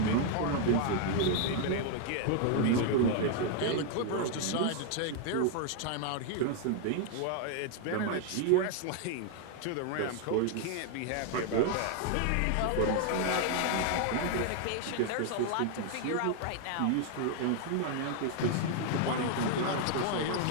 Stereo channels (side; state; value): both; different; correlation 0.00